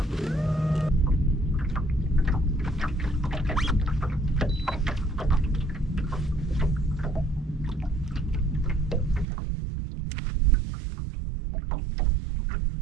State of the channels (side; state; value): left; drops out; at 9.2 s